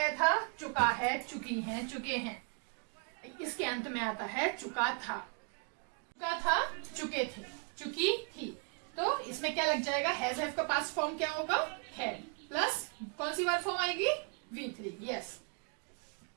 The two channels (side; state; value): left; quieter; 39.2 dB